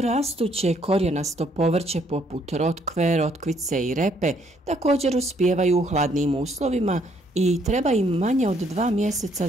korijenasto povrće poput rotkve, rotkvice i repe također uspijevaju u hladnijim uslovima i treba im manje od 2 mjeseca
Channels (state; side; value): normal; both; correlation 0.68